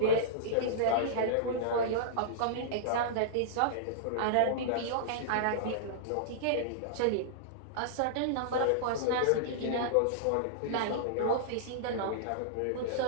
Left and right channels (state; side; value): different; both; correlation -0.02